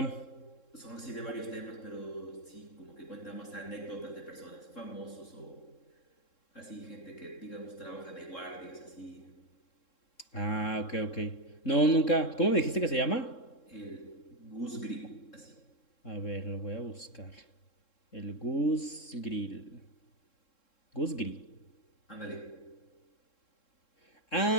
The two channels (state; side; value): late; right; 3.7 ms